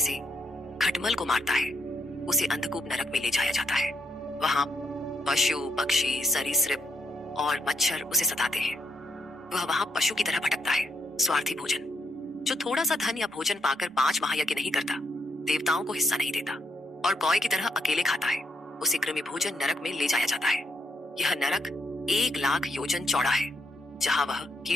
खटमल को मारता है उसे अंधकूप नरक में ले जाया जाता है। वहां पशु, पक्षी, सरीसृप और मच्छर उसे सताते हैं। वह वहां पशु की तरह भटकता है। स्वार्थी भोजन। जो थोड़ा सा धन या भोजन पाकर 5 महायज्ञ नहीं करता, देवताओं को हिस्सा नहीं देता और कौए की तरह अकेले खाता है उसे कृमि भोजन नरक में ले जाया जाता है। यह नरक 1,00,000 योजन चौड़ा है जहां वह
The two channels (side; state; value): both; normal; correlation 0.77